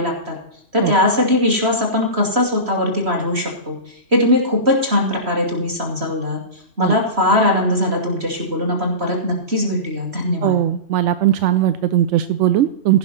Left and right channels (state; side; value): late; left; 3.1 ms